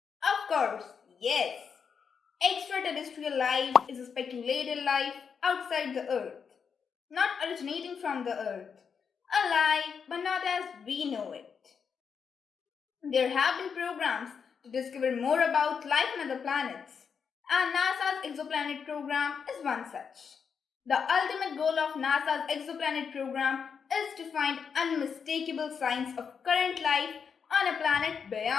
Of course, yes. Extraterrestrial life is a speculated life outside the Earth, not originating from the Earth, alive but not as we know it. There have been programs to discover more about life on other planets, and NASA's exoplanet program is one such. The ultimate goal of NASA's exoplanet program is to find unmistakable signs of current life on a planet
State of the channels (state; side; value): quieter; right; 6.4 dB